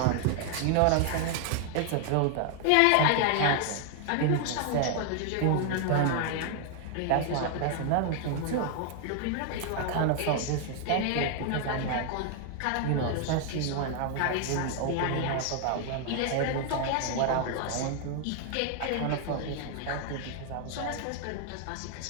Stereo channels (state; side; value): different; both; correlation 0.00